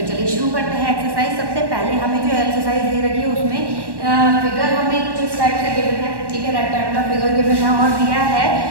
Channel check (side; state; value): left; late; 1.1 ms